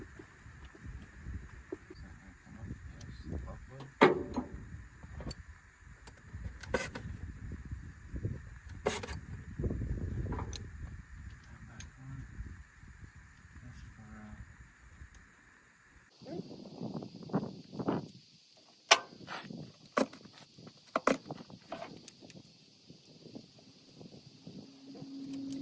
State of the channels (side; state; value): both; identical; correlation 1.00